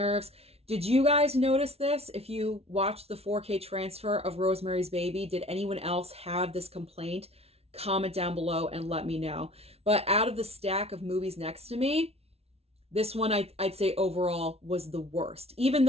Did you guys notice this? If you watched the 4K transfer of Rosemary's Baby, did anyone else have this complaint? Comment down below and let me know. But out of the stack of movies next to me, this one I'd say overall was the worst. Even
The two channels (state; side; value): late; left; 0.30 ms